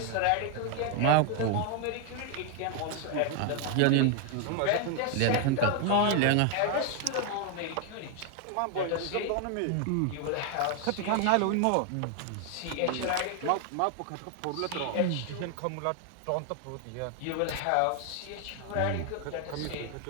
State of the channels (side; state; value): both; different; correlation 0.00